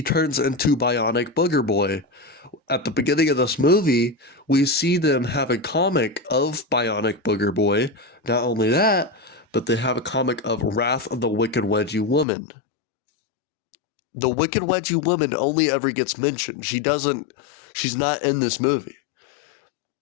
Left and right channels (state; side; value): drops out; right; at 12.2 s